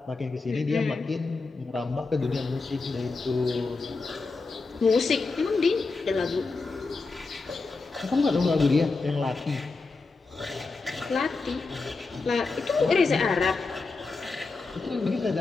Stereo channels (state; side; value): quieter; right; 3.9 dB